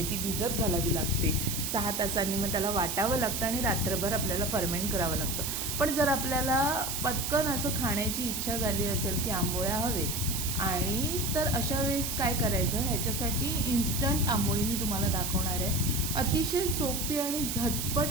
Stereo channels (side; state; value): right; noise; hiss, 2 dB below the sound